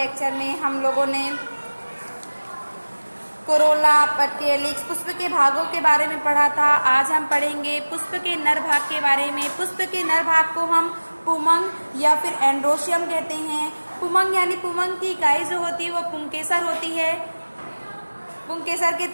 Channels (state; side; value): inverted; both; correlation -1.00